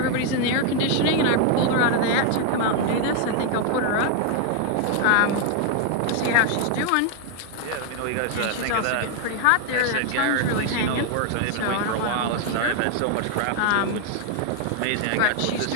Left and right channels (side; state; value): both; different; correlation 0.00